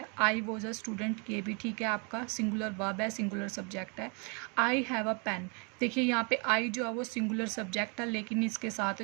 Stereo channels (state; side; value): quieter; left; 34.5 dB